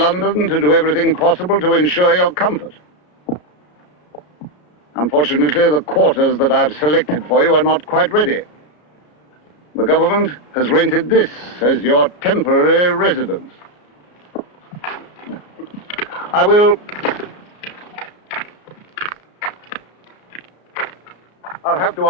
to do everything possible to ensure your comfort. Unfortunately, the quarters that I've selected for you are not quite ready. The government has rented this as your temporary residence. I'll have to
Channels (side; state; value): right; late; 33 ms